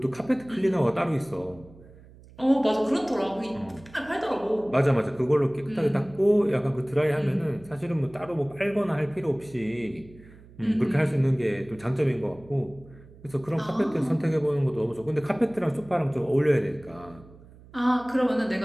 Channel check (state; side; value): noise; right; hum, 22 dB below the sound